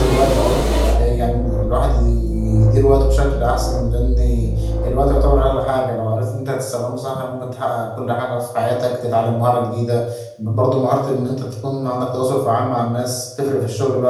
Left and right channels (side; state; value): both; identical; correlation 1.00